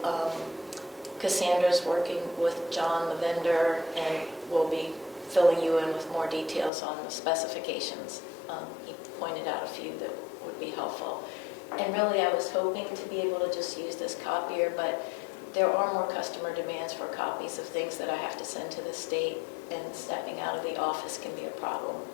Cassandra's working with John, the vendor, and will be filling you in with more details on the specifications. He pointed out a few that would be helpful. And really, I was hoping to be able to just use this copier, but there are more customer demands for copies of things that I have to send to the state, and stepping out of the office can be a problem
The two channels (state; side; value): drops out; right; at 6.7 s